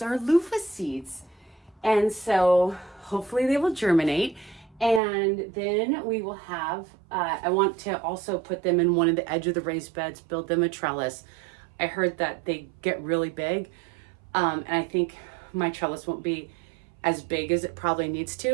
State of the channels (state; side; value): drops out; left; at 5.0 s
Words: are loofah seeds. And so hopefully they will germinate. And then we will have, I want to also put them in one of the edge of the raised beds, build them a trellis. I heard that they get really big. And I think my trellis won't be as big as it probably needs